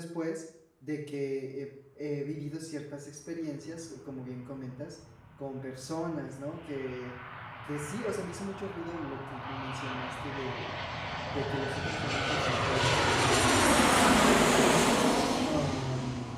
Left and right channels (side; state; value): both; identical; correlation 1.00